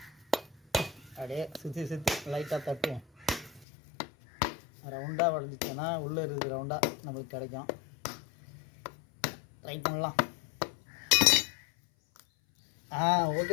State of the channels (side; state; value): right; drops out; at 3.7 s